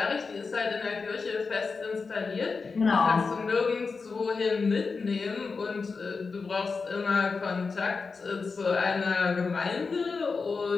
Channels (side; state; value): right; quieter; 4.6 dB